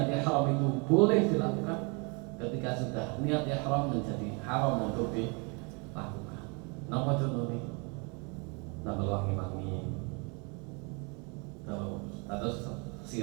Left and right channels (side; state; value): left; quieter; 32.8 dB